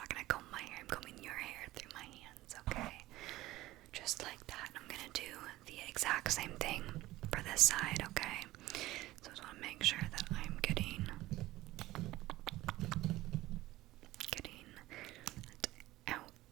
gonna comb my hair. I'm combing your hair through my hands, okay? Just like that. I'm gonna do the exact same thing for this side, okay? So I just want to make sure that I'm getting it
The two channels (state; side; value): quieter; left; 17.1 dB